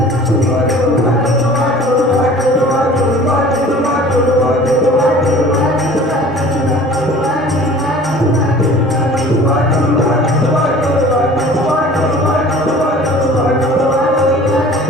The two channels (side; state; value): both; normal; correlation 0.46